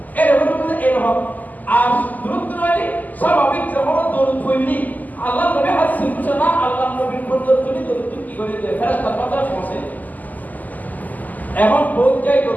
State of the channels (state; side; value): late; right; 0.081 ms